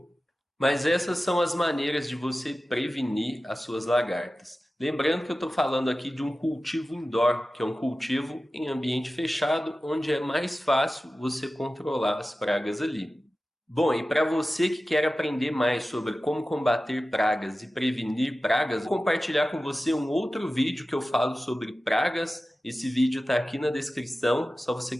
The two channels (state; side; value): normal; both; correlation 0.95